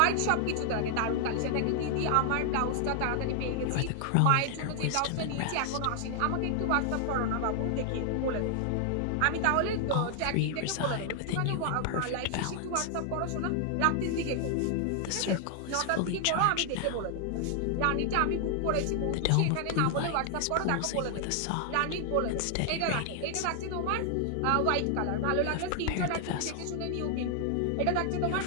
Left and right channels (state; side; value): different; both; correlation 0.00